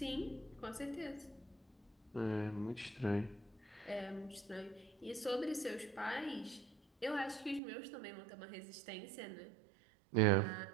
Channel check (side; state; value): left; drops out; at 7.6 s